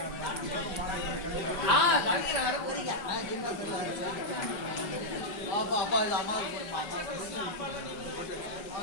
வர போறீங்க அப்பா அப்பா இது அம்மாவுக்கு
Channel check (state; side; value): late; right; 5.2 ms